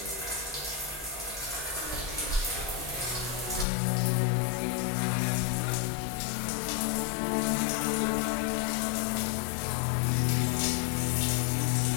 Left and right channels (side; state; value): right; drops out; at 3.7 s